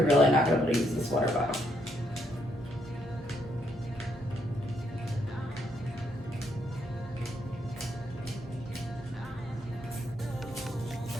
really not going to be able to use this water bottle.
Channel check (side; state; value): both; normal; correlation 0.75